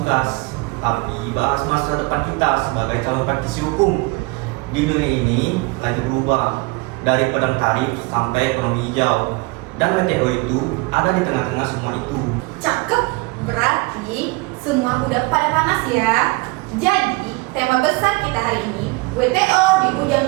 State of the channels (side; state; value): left; quieter; 25.2 dB